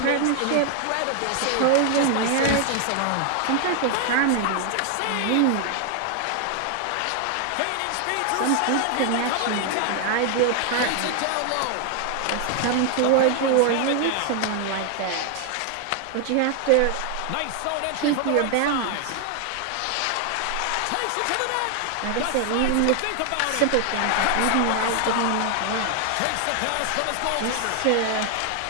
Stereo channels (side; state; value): both; different; correlation 0.00